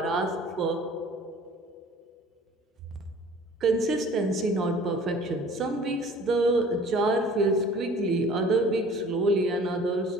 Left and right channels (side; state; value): both; normal; correlation 0.48